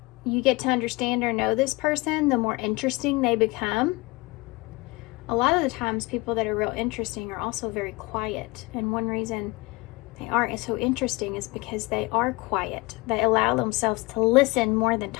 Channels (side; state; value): right; quieter; 23.5 dB